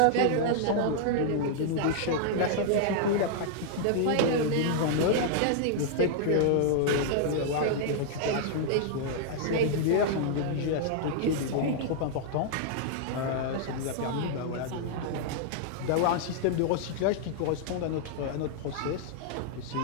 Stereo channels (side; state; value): both; different; correlation -0.01